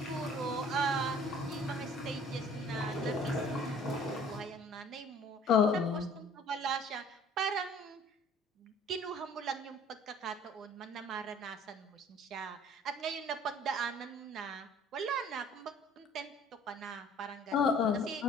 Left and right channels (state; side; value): normal; both; correlation 0.53